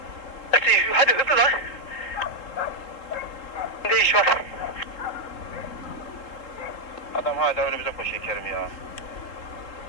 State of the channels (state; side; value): late; right; 3.6 ms